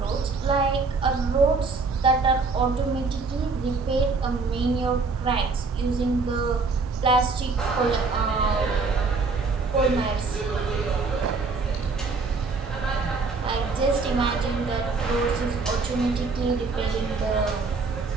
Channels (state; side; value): quieter; left; 4.2 dB